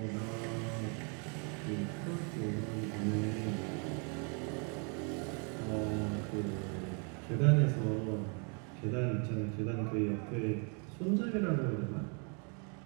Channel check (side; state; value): left; quieter; 37.1 dB